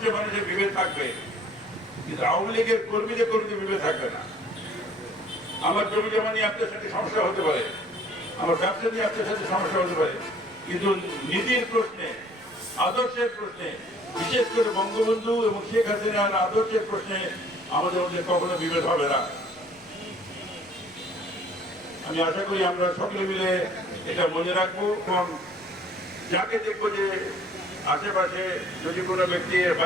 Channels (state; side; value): noise; left; rumble, 29 dB below the sound